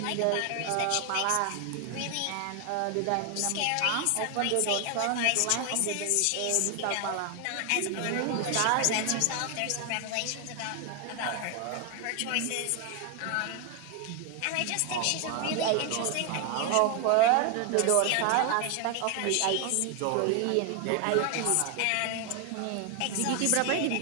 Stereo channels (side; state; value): both; different; correlation 0.01